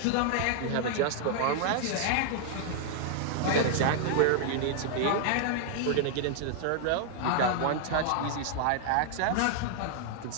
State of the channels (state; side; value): different; both; correlation -0.01